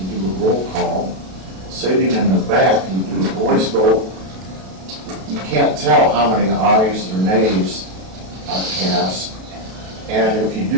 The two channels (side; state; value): left; late; 32 ms